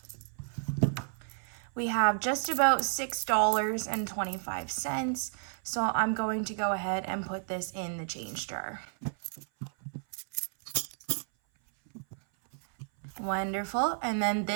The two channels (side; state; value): left; silent; 57 dB below the other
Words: We have just about $6.25, so I'm going to go ahead and put this in the change jar. Wonderful. And then